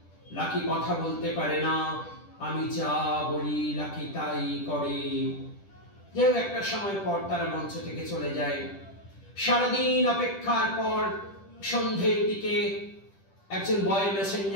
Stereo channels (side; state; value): right; late; 10 ms